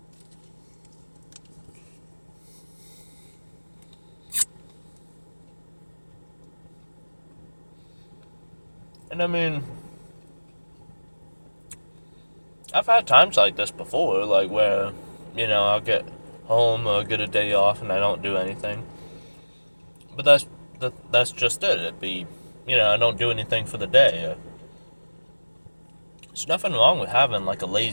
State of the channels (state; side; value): inverted; both; correlation -1.00